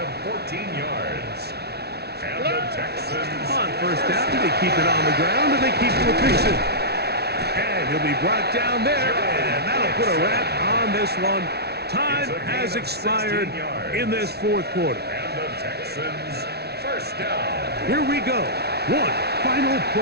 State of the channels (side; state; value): left; late; 0.48 ms